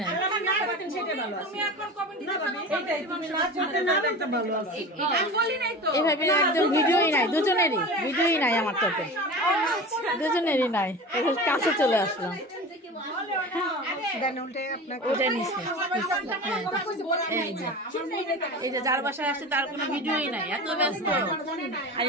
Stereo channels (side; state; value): both; normal; correlation 0.32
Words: সেটা ভালো আছে তুমি এখন কমেন্ট দিতে পারবে এইটাই তুমি নাচ করতে না একটা ভালো আছে আমি বলি নাই তো এভাবে একদম ভিডিওই নাই দুজনেরই ভিডিওই নাই আমার তো দুজনেরই নাই এখন কাছে চলে আসলাম ওটাই নিচ্ছে এই যে যার বাসায় আসছে তার কোনো ভিডিওই নাই এত ব্যস্ত আর